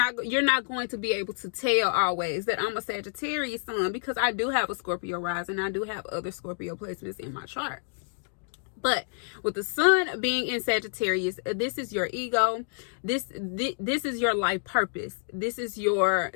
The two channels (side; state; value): right; silent; digital silence